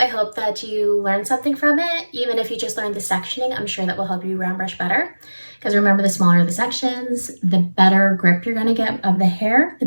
hope that you learned something from it. Even if you just learned the sectioning, I'm sure that will help you round brush better. Because remember, the smaller the sections, the better grip you're going to get of the hair, the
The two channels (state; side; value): inverted; both; correlation -1.00